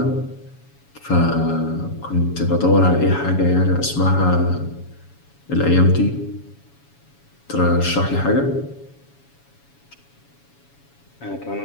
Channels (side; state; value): right; late; 7.1 ms